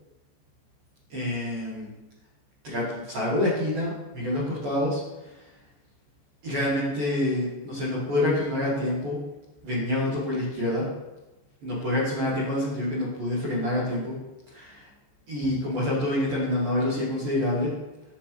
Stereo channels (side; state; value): left; late; 14 ms